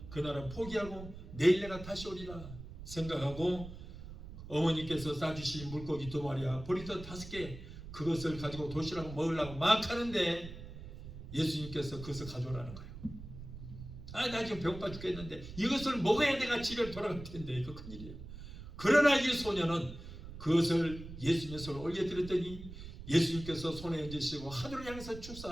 그날은 포기하고 내일 내가 다시 오리라 생각하고 어머니께서 싸주신 물고기 2마리와 보리떡 5개 그것을 가지고 도시락을 먹으려고 막 하는데 예수님께서 그것을 가져오라는 거예요. 나 지금 배고파 죽겠는데 이것을 먹어야 내가 집에 돌아갈 텐데 이거 큰일이에요. 그러나 이 소녀는 그것을 예수님의 손에 올려드렸더니 예수님께서 손에 얹으시고 하늘을 향해서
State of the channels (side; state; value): right; noise; rumble, 12 dB below the sound